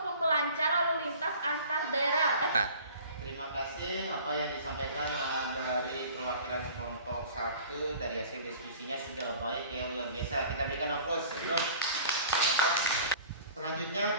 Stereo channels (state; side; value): inverted; both; correlation -0.46